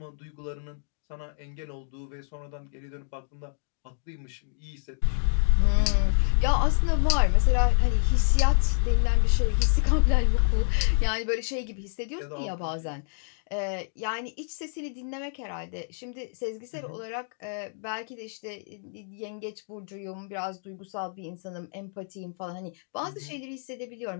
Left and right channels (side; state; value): right; silent; digital silence